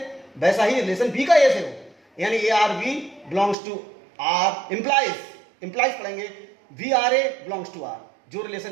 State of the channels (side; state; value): left; drops out; at 3.6 s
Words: वैसा ही रिलेशन बी का ए से हो, यानी a R B belongs to R implies पढ़ेंगे b R A belongs to R. जो